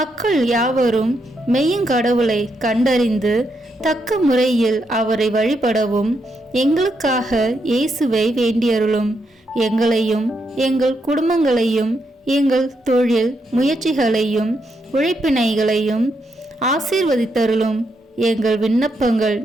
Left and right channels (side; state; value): both; normal; correlation 0.80